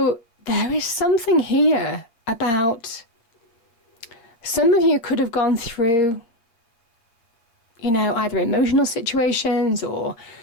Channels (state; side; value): late; right; 8.6 ms